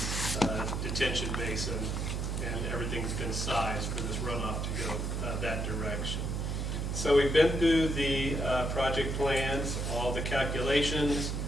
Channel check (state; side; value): noise; right; hum, 1 dB below the sound